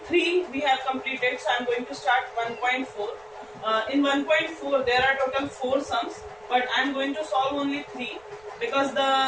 we have completed, so I am going to start 1.4. In 1.4 there are total 4 sums, but I am going to solve only 3 because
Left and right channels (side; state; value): right; noise; rumble, 29 dB below the sound